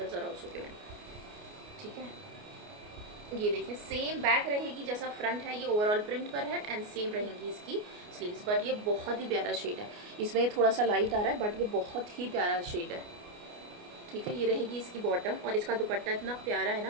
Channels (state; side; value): late; left; 29 ms